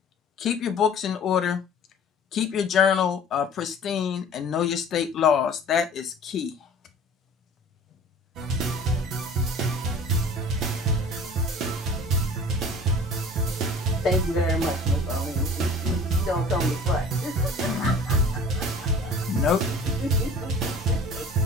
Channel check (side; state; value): both; normal; correlation 0.44